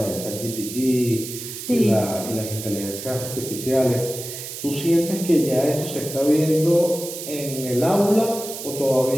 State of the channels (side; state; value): right; noise; hiss, 9 dB below the sound